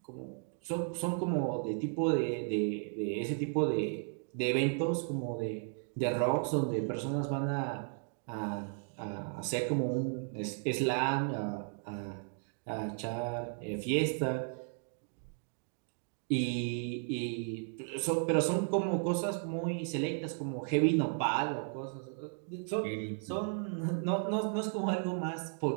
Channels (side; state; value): left; silent; 55 dB below the other